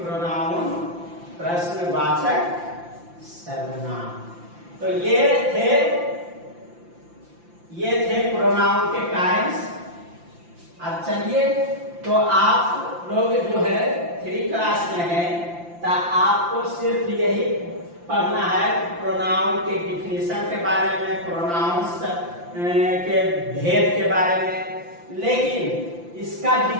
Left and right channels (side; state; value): left; late; 5.8 ms